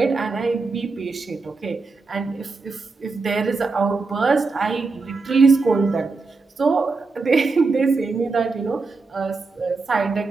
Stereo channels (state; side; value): quieter; left; 4.0 dB